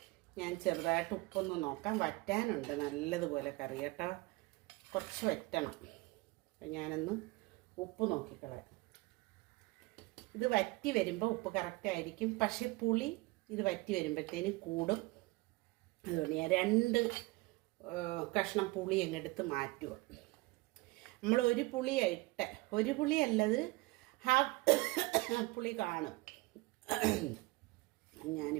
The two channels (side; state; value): left; quieter; 22.9 dB